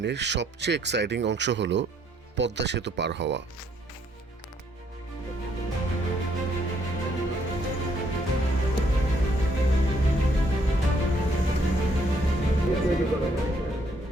সবচেয়ে এক্সাইটিং অংশ হলো পদ্মা সেতু পার হওয়া।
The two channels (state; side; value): normal; both; correlation 0.69